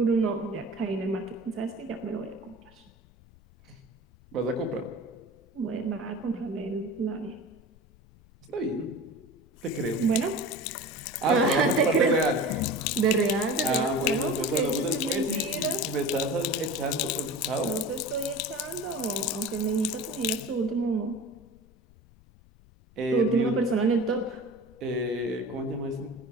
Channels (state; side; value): noise; left; rumble, 26 dB below the sound